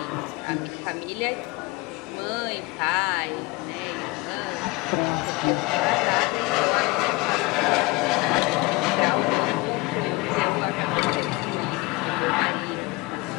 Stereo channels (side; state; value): right; quieter; 23.1 dB